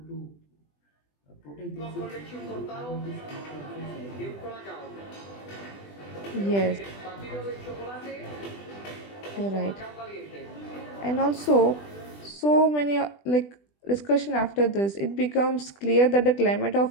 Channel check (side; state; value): right; late; 20 ms